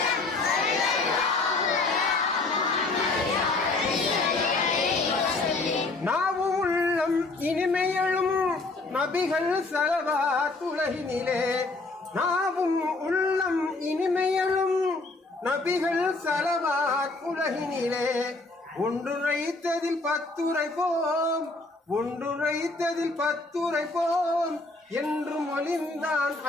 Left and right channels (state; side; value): quieter; right; 3.3 dB